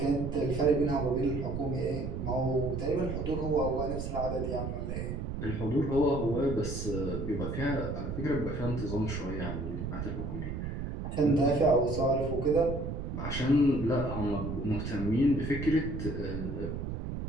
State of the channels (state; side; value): noise; right; rumble, 4 dB below the sound